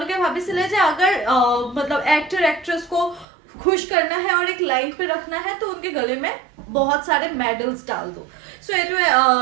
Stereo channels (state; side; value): drops out; left; at 3.2 s